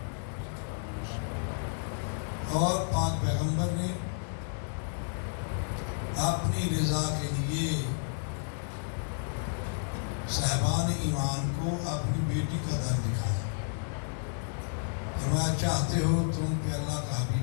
اور پاک پیغمبر نے اپنی رضا کے لیے صاحبان ایمان کو اپنی بیٹی کا در دکھایا فرمایا چاہتے ہو تم پہ اللہ کا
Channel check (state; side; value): silent; right; digital silence